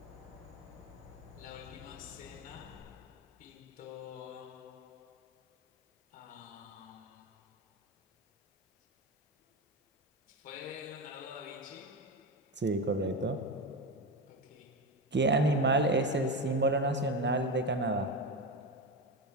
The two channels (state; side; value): normal; both; correlation 0.18